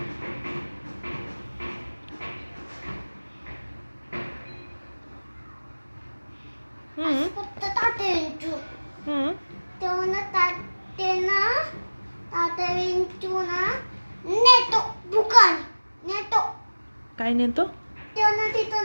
फक्त तात्या विंचू. तेव्हा तात्या विंचू ना नेतो दुकान नेतो. काय नेतो? तेव्हा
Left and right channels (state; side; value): inverted; both; correlation -1.00